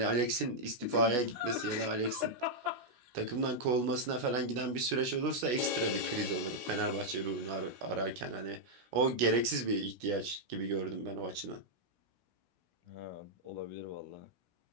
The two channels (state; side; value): late; left; 16 ms